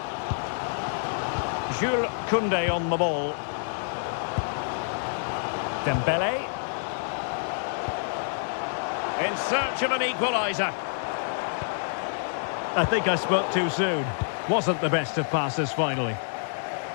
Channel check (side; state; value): right; silent; digital silence